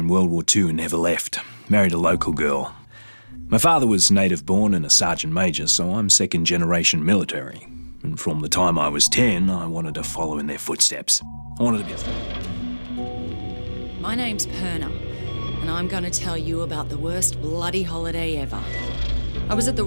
World War II and never left. Married a local girl. My father was native born and a sergeant major, so I'm second generation military. And from the time I was 10, I wanted to follow in their footsteps. I wanted to be... My name's Perna, and I'm going to tell you about the worst bloody holiday ever. I was at the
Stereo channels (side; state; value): both; inverted; correlation -1.00